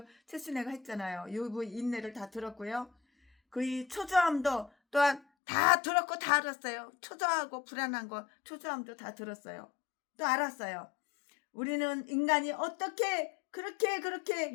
최순애가 했잖아요. 욥의 인내를 다 들었고요. 그의 초조함도 또한 다 들었고 다 알았어요. 초조하고 불안한 거 초조함도 다 들었어요. 또 알았어요. 우리는 인간이 어떻게 그렇게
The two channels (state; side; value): drops out; right; at 5.2 s